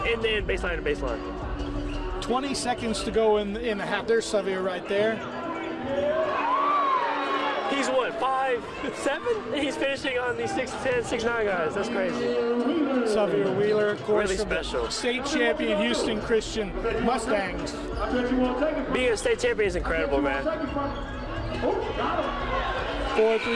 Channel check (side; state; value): both; identical; correlation 1.00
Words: end-to-end, baseline to baseline. 20 seconds to go in the half. There's Xavier right there. He's what, 5'7"? He's finishing on these 6'10", 6'9" guys. That's crazy. Xavier Wheeler, of course, really special. State champion Houston Christian Mustangs. Being a state champion is incredible, man. 4,